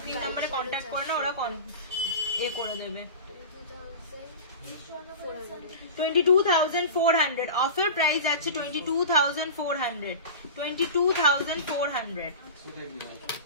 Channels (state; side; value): inverted; both; correlation -0.32